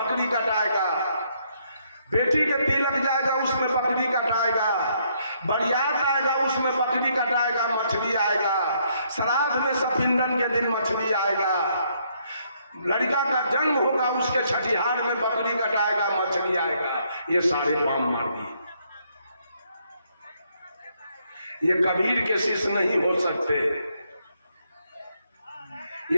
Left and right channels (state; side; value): inverted; both; correlation -0.72